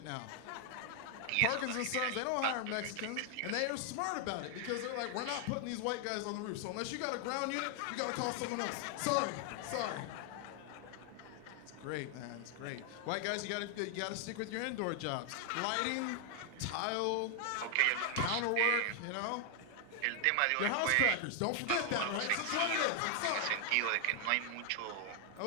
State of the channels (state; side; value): different; both; correlation 0.00